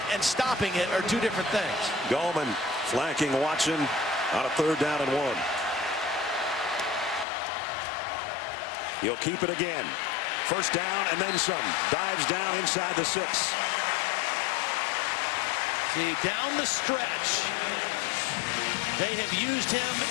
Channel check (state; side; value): drops out; right; at 7.2 s